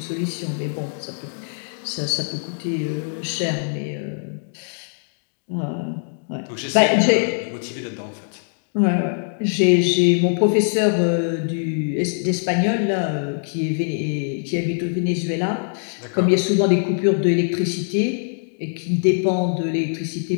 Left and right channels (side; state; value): right; silent; digital silence